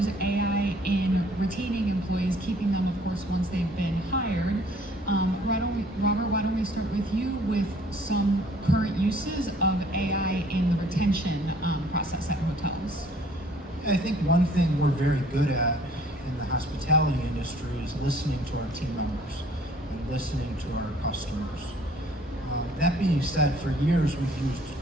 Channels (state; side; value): normal; both; correlation 0.57